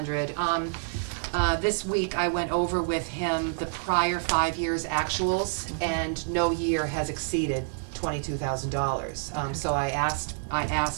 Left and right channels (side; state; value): left; silent; digital silence